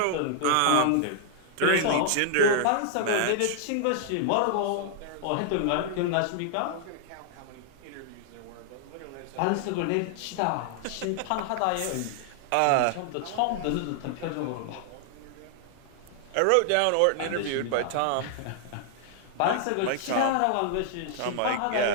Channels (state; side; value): different; both; correlation 0.00